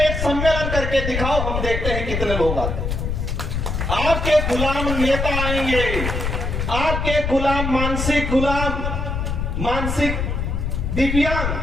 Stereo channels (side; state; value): left; noise; rumble, 2 dB below the sound